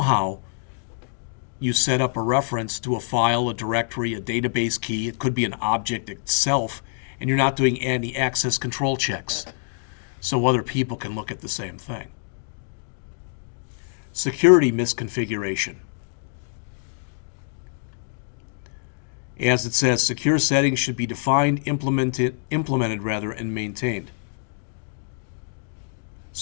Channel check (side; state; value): right; silent; digital silence